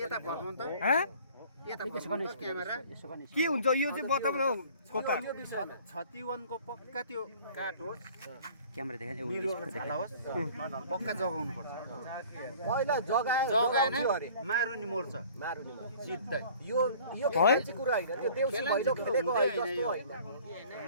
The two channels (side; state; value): both; inverted; correlation -0.49